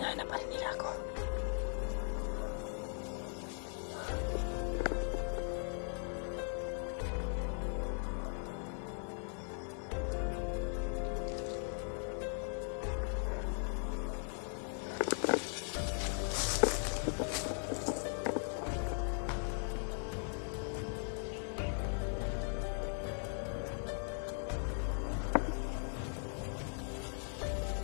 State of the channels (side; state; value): right; silent; 52 dB below the other